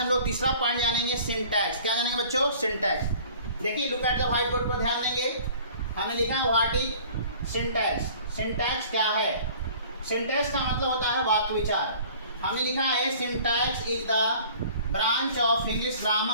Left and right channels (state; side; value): inverted; both; correlation -0.49